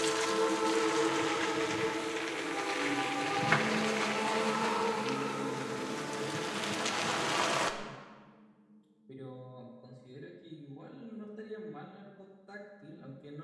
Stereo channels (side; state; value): both; identical; correlation 1.00